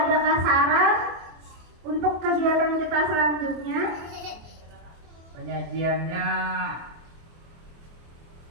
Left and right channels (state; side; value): late; left; 24 ms